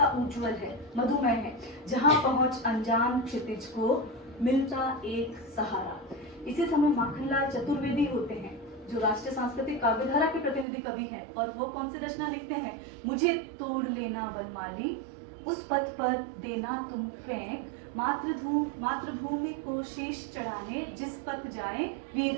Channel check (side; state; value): left; drops out; at 10.7 s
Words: उज्जवल है, मधुमय है, जहाँ पहुंच अनजान क्षितिज को मिलता एक सहारा। इसी समय माखनलाल चतुर्वेदी होते हैं जो राष्ट्रीय सांस्कृतिक काव्यधारा के प्रतिनिधि कवि हैं, और वो कौन सी रचना लिखते हैं? मुझे तोड़ लेना वनमाली, उस पथ पर देना तुम फेंक, मातृभूमि को शीश चढ़ाने, जिस पथ जाए